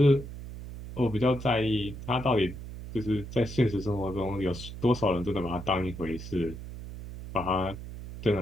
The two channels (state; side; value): noise; right; hum, 11 dB below the sound